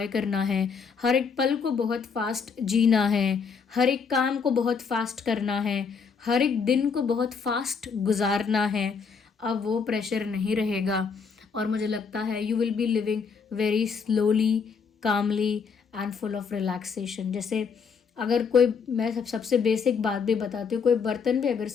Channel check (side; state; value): right; quieter; 5.7 dB